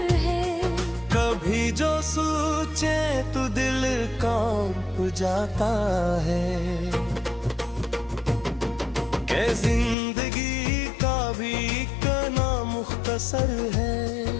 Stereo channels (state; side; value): drops out; right; at 10.0 s